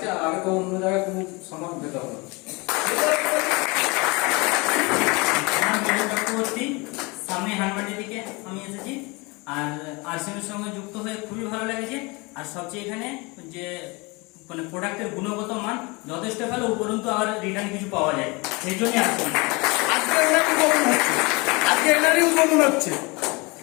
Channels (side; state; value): right; quieter; 26.8 dB